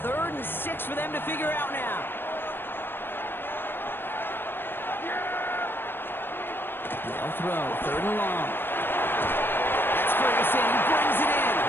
3rd and 6 for them to figure out now. They'll throw, 3rd and long. That's Ferguson, he brings it in.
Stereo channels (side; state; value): right; late; 0.099 ms